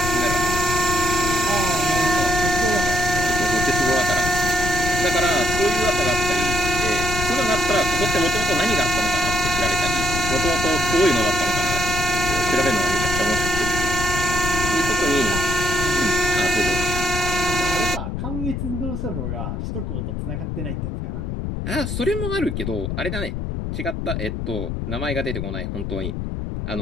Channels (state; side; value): noise; left; rumble, 4 dB below the sound